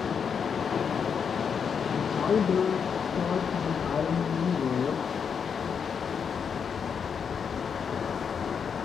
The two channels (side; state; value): right; quieter; 6.8 dB